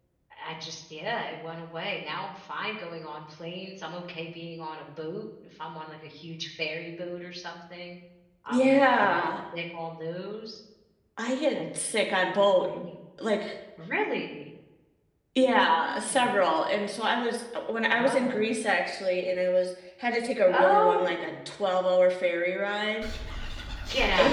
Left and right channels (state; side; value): identical; both; correlation 1.00